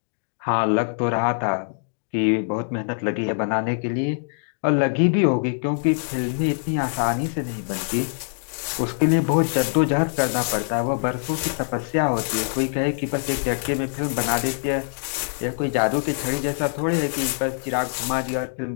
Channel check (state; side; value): silent; right; digital silence